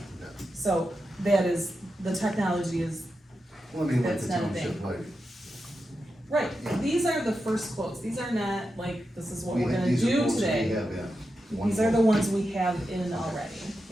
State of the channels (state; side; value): normal; both; correlation 0.89